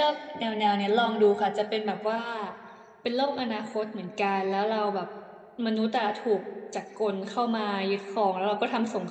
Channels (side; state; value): both; identical; correlation 1.00